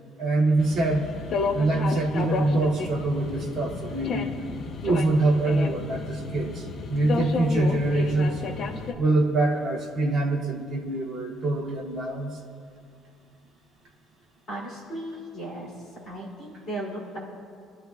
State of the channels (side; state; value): both; normal; correlation 0.77